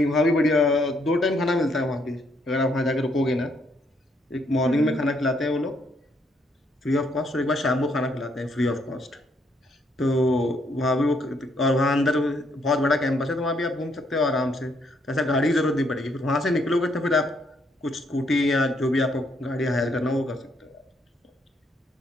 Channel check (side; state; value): both; normal; correlation 0.72